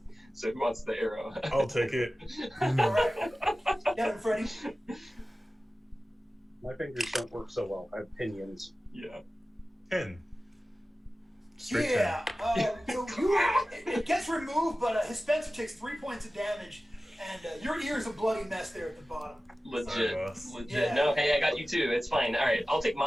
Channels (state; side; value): normal; both; correlation 0.96